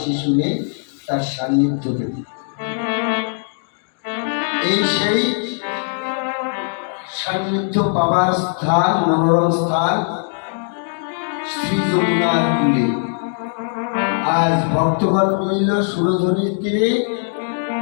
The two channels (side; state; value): right; silent; digital silence